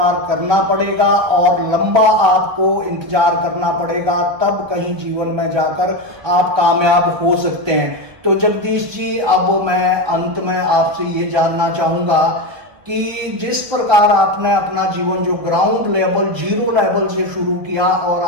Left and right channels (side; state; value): left; late; 1.6 ms